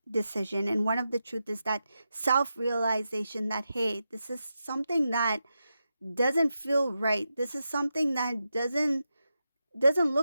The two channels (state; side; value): inverted; both; correlation -0.89